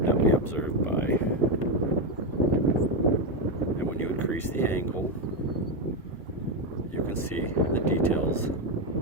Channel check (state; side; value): normal; both; correlation 0.07